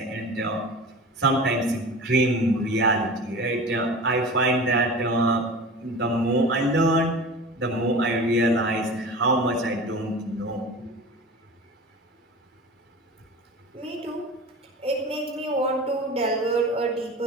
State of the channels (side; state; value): both; normal; correlation 0.35